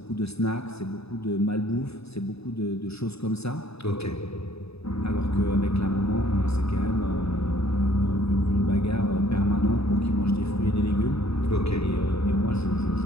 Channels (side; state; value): right; late; 0.79 ms